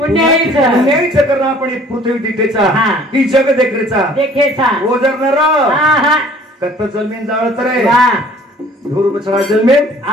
करणं आपण पृथ्वी दिठेचा ही जग देखरेचा ओजर नर कत्त जलमेन जाळत रे धूर बचरा जलमेन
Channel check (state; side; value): normal; both; correlation 0.53